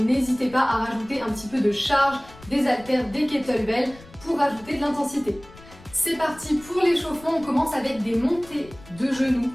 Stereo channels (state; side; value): noise; left; rumble, 21 dB below the sound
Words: pas à rajouter un petit peu de charge, des haltères, des kettlebells pour rajouter de l'intensité. C'est parti pour l'échauffement, on commence avec des montées de genoux